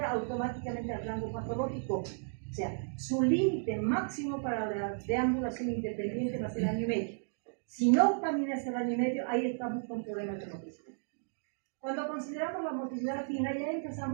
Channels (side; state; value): left; silent; digital silence